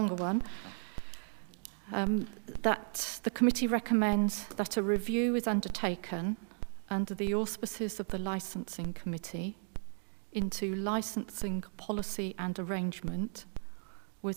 one. That the committee recommends that a review is undertaken under the auspices of the Licensing Committee into licensing policy and arrangement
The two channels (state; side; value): silent; left; 54 dB below the other